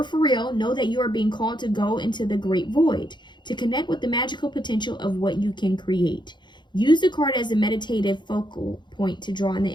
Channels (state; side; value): late; right; 0.22 ms